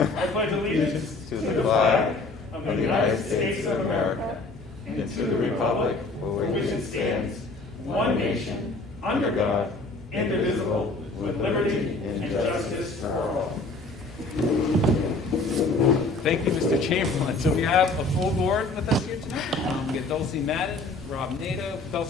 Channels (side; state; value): right; quieter; 3.3 dB